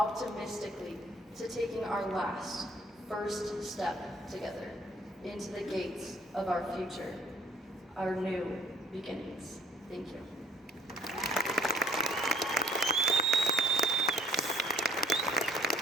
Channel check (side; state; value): both; normal; correlation 0.57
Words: to taking our last, first step together into the gates of our future, our new beginnings. Thank you.